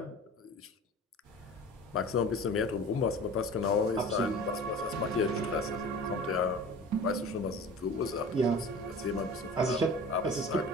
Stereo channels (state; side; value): normal; both; correlation 0.38